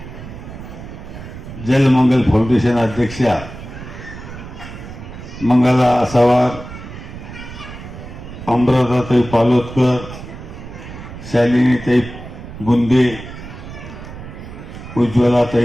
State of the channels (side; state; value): right; noise; rumble, 13 dB below the sound